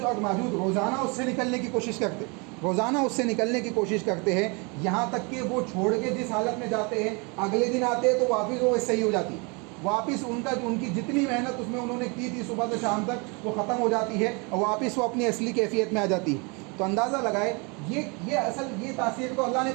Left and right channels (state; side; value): quieter; left; 30.9 dB